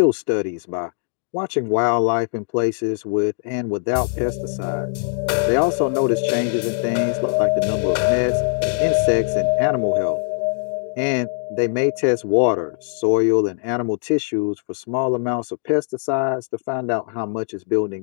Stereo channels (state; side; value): silent; right; 65 dB below the other